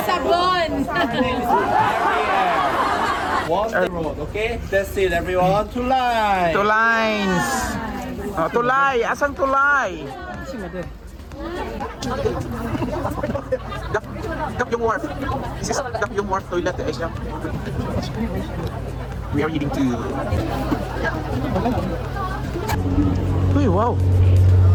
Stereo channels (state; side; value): identical; both; correlation 1.00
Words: Sabon. Her name is Ariel. One the road, okay? That's it, everyone. Tulay. Two lines. Oh, tulay. Asang tulay? Dap yung wharf. This is Dap yung wharf toilet, Asia. We are eating too. Uy, wow.